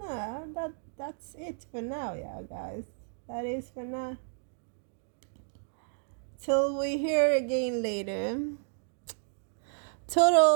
that's it for now, yeah, guys. That is for now. Till we hear again later.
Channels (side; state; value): left; silent; digital silence